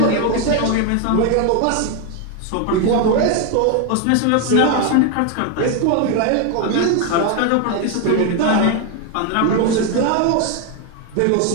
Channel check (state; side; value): different; both; correlation 0.01